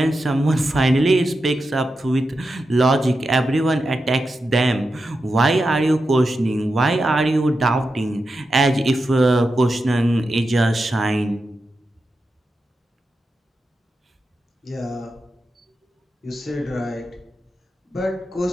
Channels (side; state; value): both; normal; correlation 0.89